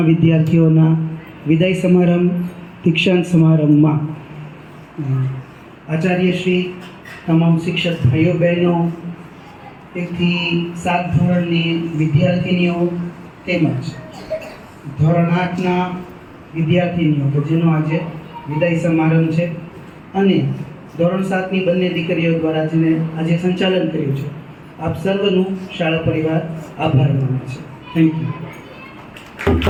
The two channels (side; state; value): both; identical; correlation 1.00